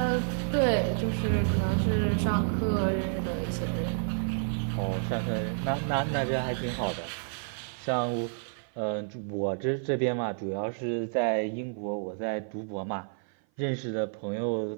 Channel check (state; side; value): silent; left; 55 dB below the other